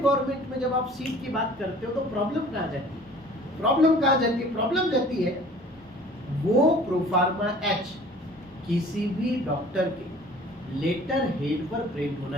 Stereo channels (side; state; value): both; normal; correlation 0.49